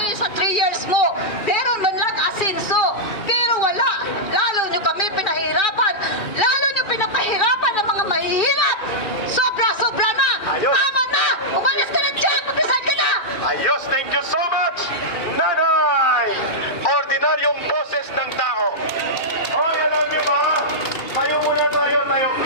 sa 3 years mo. Pero man lang asinso. Pero wala. Lalo nyo kami pinahirapan. Lalo nyo pinapahirapan ng mga mahihirap. Sobra-sobra na. Ayos. Tama na. Umalis ka na dyan. Magdasal ka na. Ayos, thank you so much, Nanay! Ordinaryong boses ng tao. Hoy, alam niyo ba? Tayo muna tayo,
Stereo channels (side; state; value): right; late; 2.4 ms